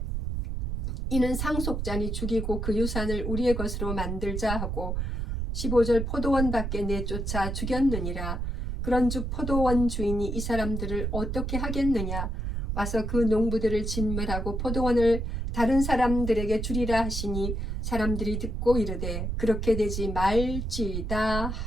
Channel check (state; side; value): noise; right; rumble, 2 dB below the sound